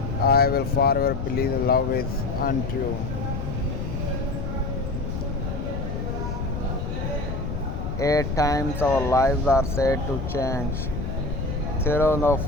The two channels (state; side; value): noise; left; rumble, 4 dB below the sound